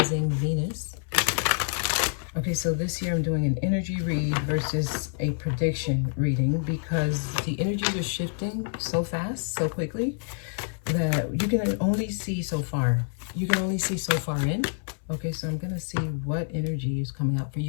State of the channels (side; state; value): right; silent; 58 dB below the other